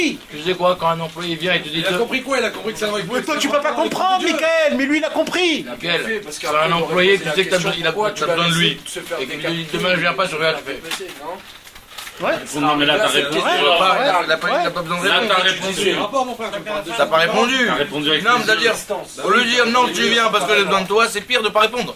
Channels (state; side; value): identical; both; correlation 1.00